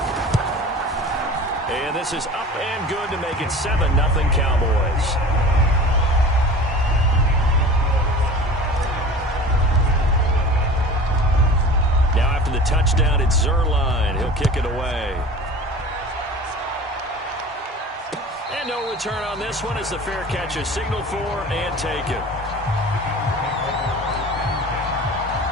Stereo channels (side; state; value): both; normal; correlation 0.39